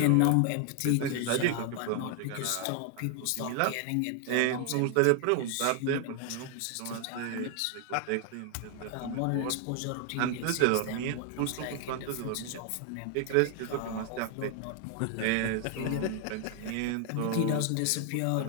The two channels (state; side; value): different; both; correlation 0.00